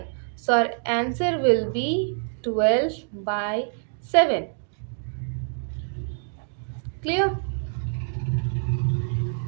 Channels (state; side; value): silent; left; digital silence